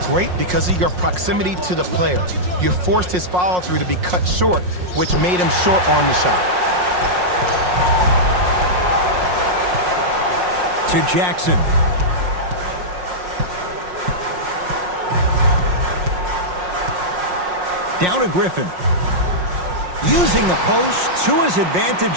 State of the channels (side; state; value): left; late; 5.6 ms